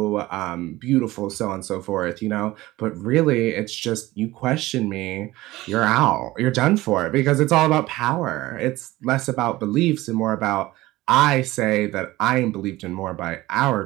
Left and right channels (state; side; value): quieter; left; 18.1 dB